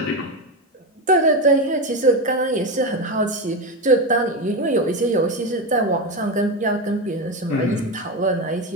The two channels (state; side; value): normal; both; correlation 0.15